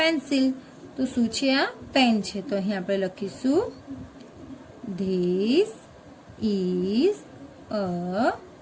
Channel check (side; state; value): both; identical; correlation 1.00